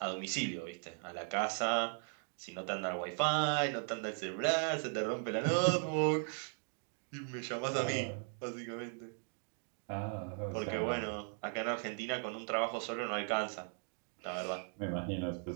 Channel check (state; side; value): silent; left; 52 dB below the other